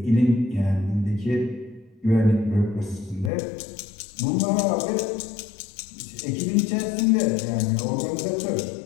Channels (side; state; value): right; drops out; at 3.3 s